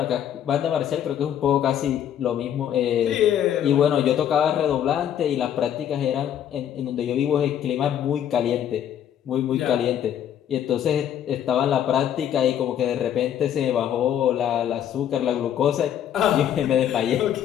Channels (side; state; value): right; quieter; 10.0 dB